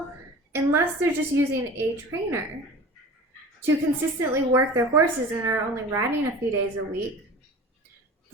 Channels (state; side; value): normal; both; correlation 0.39